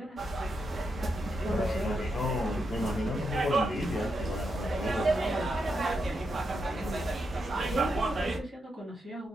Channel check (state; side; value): normal; both; correlation 0.84